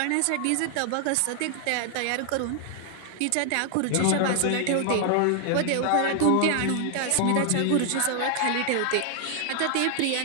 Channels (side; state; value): both; different; correlation 0.00